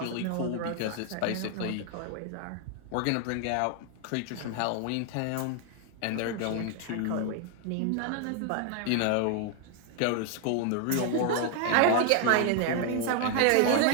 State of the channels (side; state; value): both; different; correlation 0.00